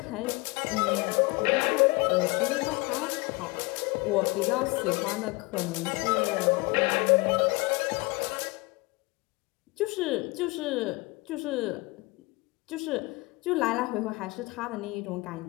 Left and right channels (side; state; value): right; quieter; 24.9 dB